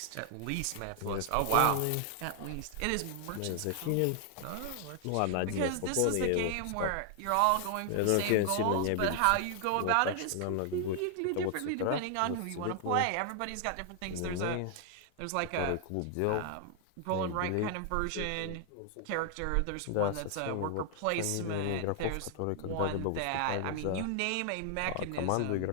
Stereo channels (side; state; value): both; different; correlation 0.00